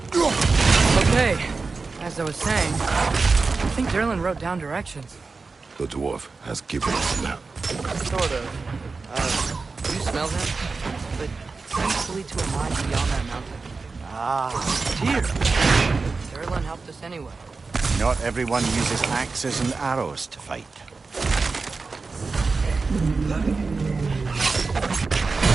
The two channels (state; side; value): quieter; left; 4.2 dB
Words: Okay, as I was saying, I think Derlin wrote down directions. The dwarf has given us a map. Sort of. You smell him? But it seems to lead to a mine beyond that mountain. Ah, dear. Derlin helped us anyway. Not everyone uses axes and arrows to fight.